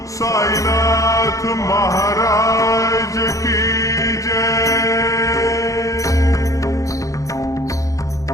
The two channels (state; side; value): late; right; 0.16 ms